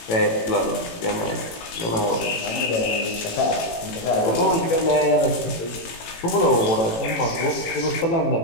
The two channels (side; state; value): right; late; 18 ms